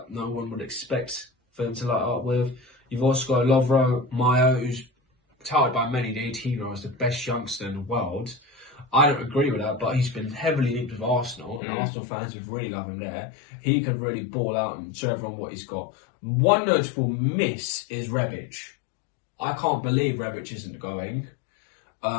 no one would expect for them to light up with. You've also got Lovro Mayo, who's touted by many the 18-year-old as the best youngster in the world. I don't agree with that, but he's been heavily linked with Arsenal, and Arsenal fans would really love him there. He could really ball out and show everyone what he's got. One notable miss is Rebic. I can't believe Rebic isn't going.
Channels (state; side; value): drops out; right; at 11.6 s